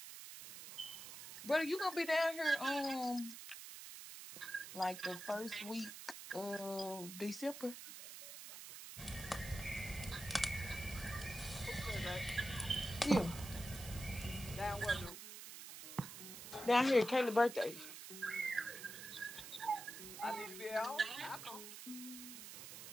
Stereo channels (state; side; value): noise; right; hiss, 11 dB below the sound